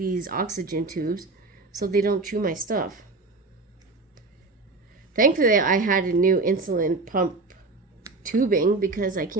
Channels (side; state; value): left; quieter; 3.5 dB